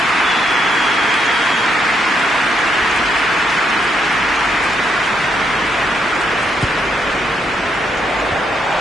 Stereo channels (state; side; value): normal; both; correlation 0.76